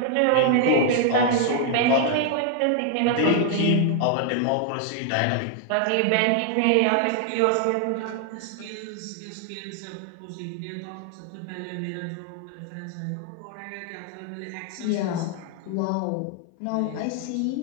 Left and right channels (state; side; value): different; both; correlation 0.00